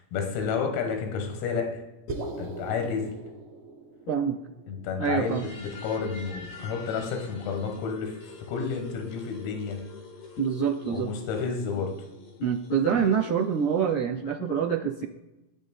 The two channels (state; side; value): late; right; 17 ms